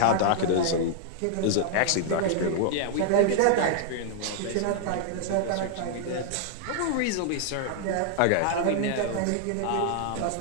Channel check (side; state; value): both; different; correlation -0.01